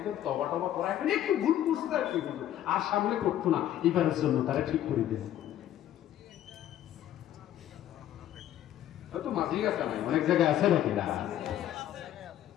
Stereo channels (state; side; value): quieter; right; 11.9 dB